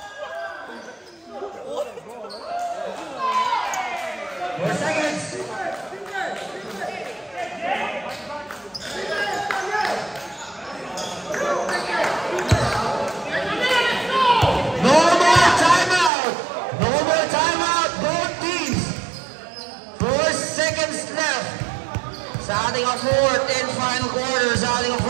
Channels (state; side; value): drops out; left; at 16.1 s